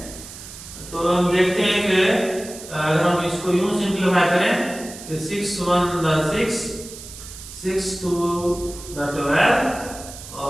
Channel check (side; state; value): right; noise; hiss, 14 dB below the sound